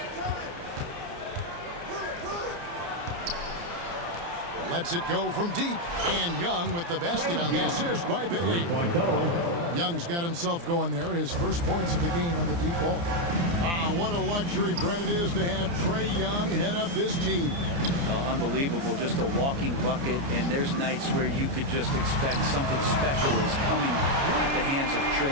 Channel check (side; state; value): left; late; 29 ms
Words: Lets it go from deep. And Young with the basket on the assist by Bay. Young's got himself going there. His first points of the game on the deep ball. What a luxury, Brent, it is to have Trae Young head up this team. Unbelievable, just a walking bucket, and there's nights where you could just expect something special is coming at the hands of